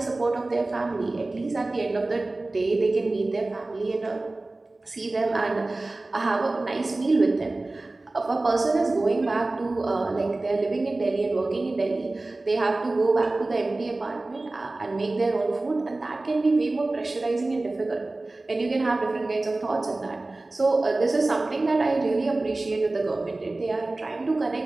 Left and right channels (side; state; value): left; quieter; 3.0 dB